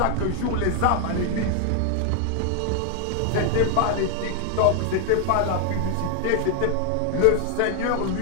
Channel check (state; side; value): different; both; correlation 0.00